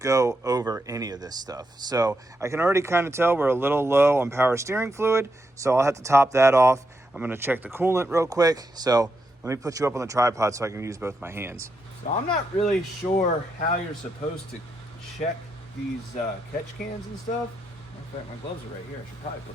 over any of this stuff. So I can already kind of tell we're a little low on power steering fluid, so I'll have to top that off. I'm going to check the coolant real quick. So let me put you up on the tripod so I can use both my hands. So I'm not really sure how you're supposed to check these catch cans and stuff. In fact, my gloves are right here. I should probably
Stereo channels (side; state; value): both; normal; correlation 0.83